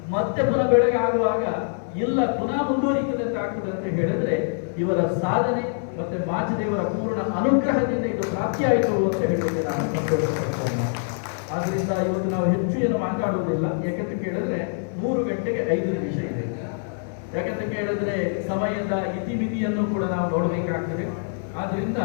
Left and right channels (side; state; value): right; silent; digital silence